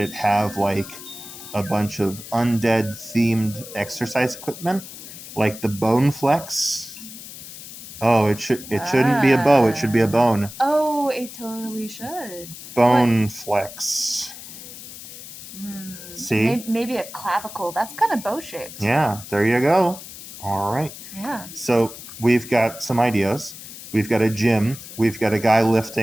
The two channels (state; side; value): noise; left; hiss, 14 dB below the sound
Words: have like a bunch of undead themed exercise equipment, like the Bone Flex. Oh, it shouldn't be a bow. It should be a bone. Oh, it totally should. Bone Flex. See? Maybe a clavicle. That's kind of bow shaped. Yeah, there you go. All right. Yeah. So we've got some ideas. We've got a gym. We've got a guy